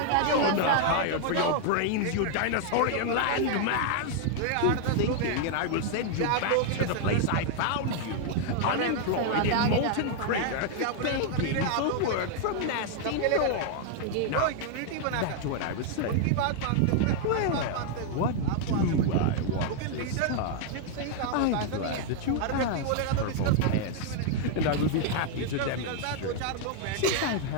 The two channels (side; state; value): both; different; correlation 0.00